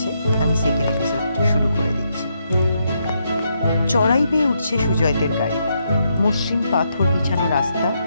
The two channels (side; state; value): both; inverted; correlation -0.79